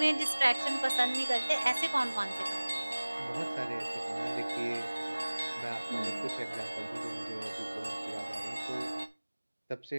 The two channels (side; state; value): both; inverted; correlation -1.00